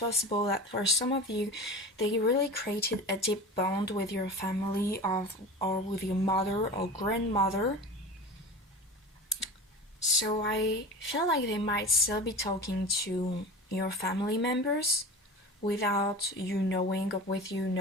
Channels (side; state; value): both; normal; correlation 0.32